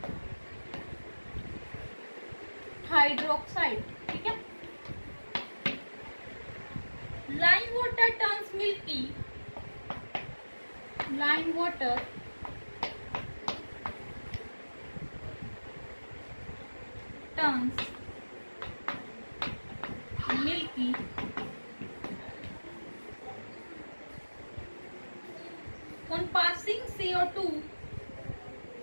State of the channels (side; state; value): both; inverted; correlation -1.00